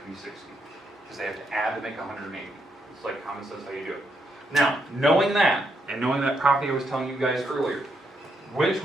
to be 60. Because they have to add to make 180. It's like common sense how you do it. Now, knowing that, and knowing that property I was telling you guys earlier, which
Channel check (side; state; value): both; normal; correlation 0.78